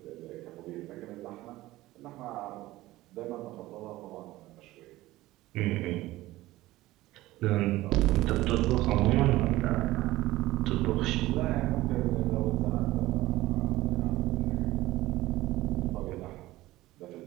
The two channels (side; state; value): left; quieter; 17.4 dB